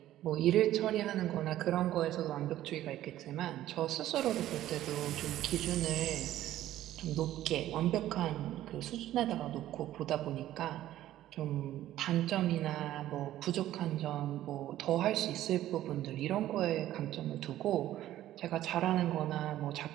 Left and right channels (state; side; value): quieter; left; 13.5 dB